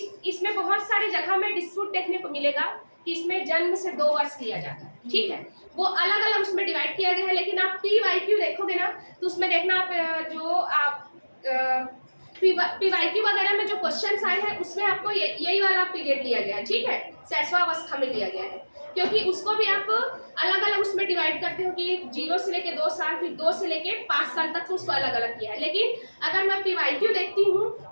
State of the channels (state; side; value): inverted; both; correlation -1.00